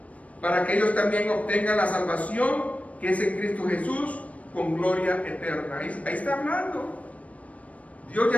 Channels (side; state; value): right; late; 0.067 ms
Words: para que ellos también obtengan la salvación que es en Cristo Jesús, con gloria eterna. Ahí está hablando. Dios